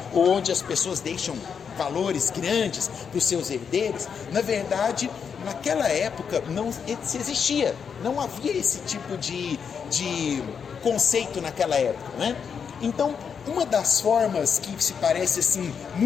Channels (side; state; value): right; quieter; 6.7 dB